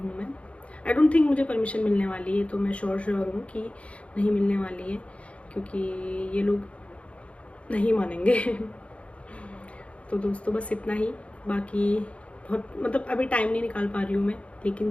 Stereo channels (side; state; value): right; late; 0.062 ms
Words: मैं। आई डोंट थिंक मुझे परमिशन मिलने वाली है, तो मैं श्योर हूँ कि नहीं मिलने वाली है, क्योंकि ये लोग नहीं मानेंगे तो दोस्तों बस इतना ही। बाकी बहुत मतलब अभी टाइम नहीं निकाल पा रही हूँ मैं, लेकिन